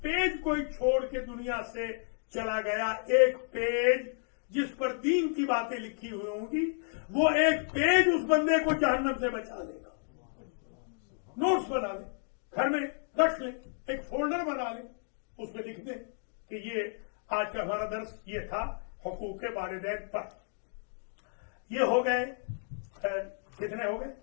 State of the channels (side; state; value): right; silent; 56 dB below the other